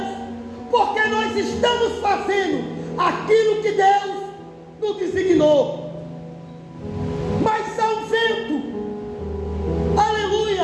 porque nós estamos fazendo aquilo que Deus nos designou. Mas há um vento,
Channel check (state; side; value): identical; both; correlation 1.00